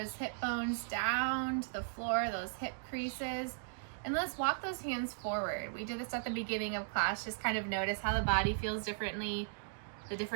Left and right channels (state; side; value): silent; left; digital silence